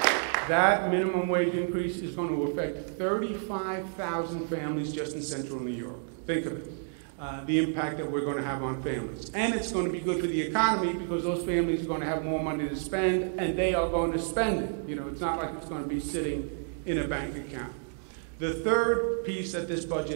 That minimum wage increase is going to affect 35,000 families just in central New York. Think of it, the impact that we're going to have on families. And it's going to be good for the economy because those families are going to have more money to spend, and they are going to spend it. You know, it's not like it's going to be sitting in a bank account. The third piece that this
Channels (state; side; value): silent; left; digital silence